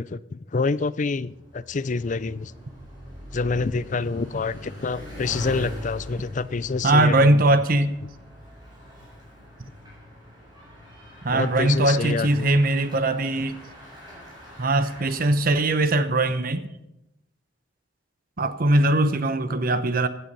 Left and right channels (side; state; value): both; normal; correlation 0.46